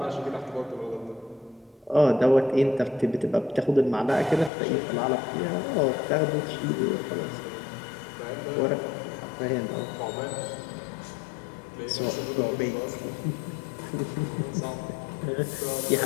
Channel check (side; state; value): right; drops out; at 4.5 s